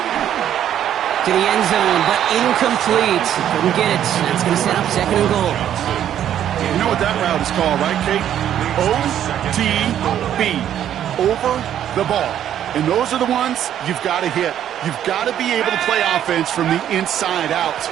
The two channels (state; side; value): quieter; left; 10.5 dB